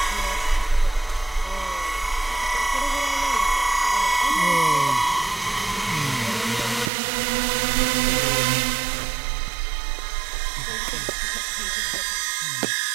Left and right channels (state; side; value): drops out; left; at 6.9 s